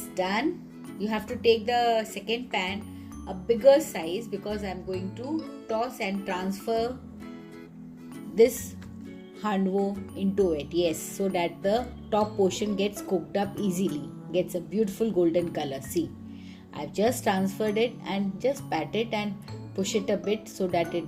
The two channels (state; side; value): identical; both; correlation 1.00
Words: done. You have to take the second pan a bigger size because I'm going to toss and transfer this handvo into it. Yes, so that the top portion gets cooked up easily, gets a beautiful golden color. See, I've just transferred it and just pat it and push it a bit so that